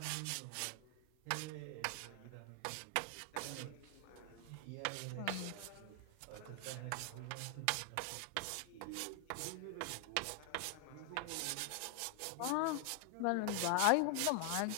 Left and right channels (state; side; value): different; both; correlation 0.00